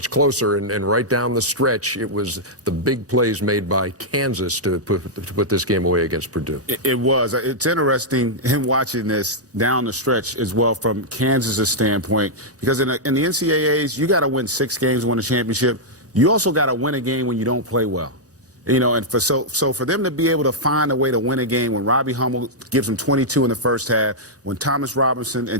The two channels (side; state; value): both; normal; correlation -0.06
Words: closer, and right down the stretch, it was the big plays made by Kansas to put this game away against Purdue. It was. It's interesting him watching this down the stretch as well from Kansas' standpoint, because in the NCAAs, you got to win 6 games to win a championship. You also got to win a game when you don't play well. You know, and so for them to be able to find a way to win a game when Robbie Hummel gives them 22 in the first half, when Thomas Robinson and